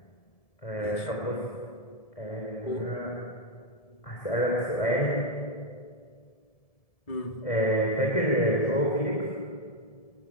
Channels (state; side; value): late; right; 1.7 ms